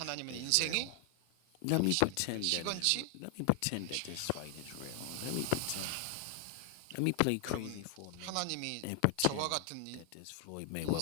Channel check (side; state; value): both; different; correlation 0.00